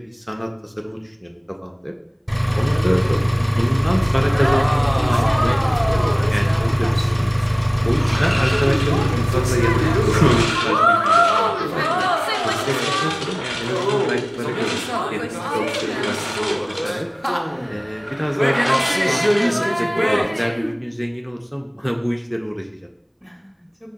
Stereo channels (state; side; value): identical; both; correlation 1.00